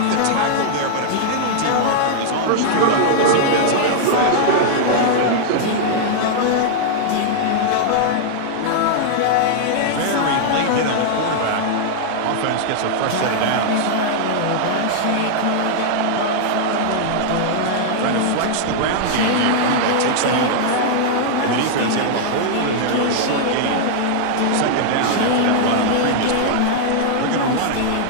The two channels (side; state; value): both; different; correlation -0.01